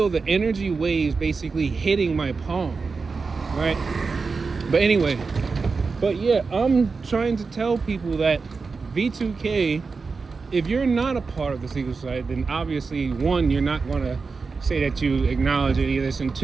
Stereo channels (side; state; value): left; quieter; 4.6 dB